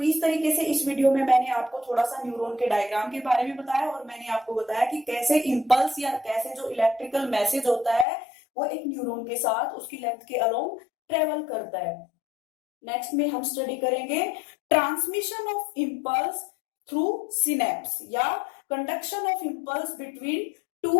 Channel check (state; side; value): drops out; right; at 8.1 s